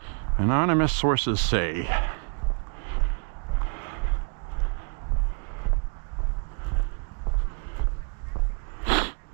Anonymous sources say,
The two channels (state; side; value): quieter; left; 38.0 dB